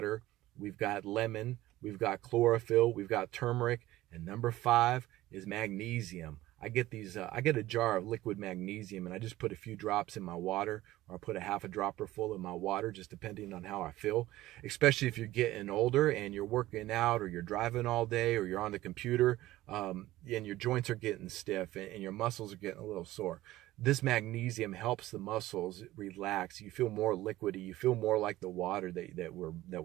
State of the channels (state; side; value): quieter; left; 16.2 dB